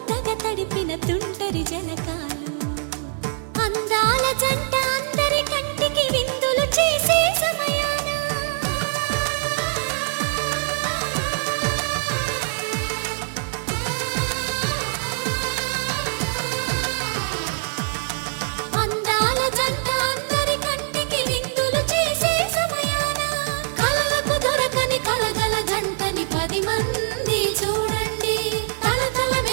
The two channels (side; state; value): left; silent; digital silence